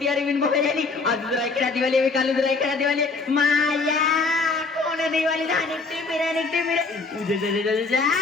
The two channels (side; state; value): right; quieter; 4.0 dB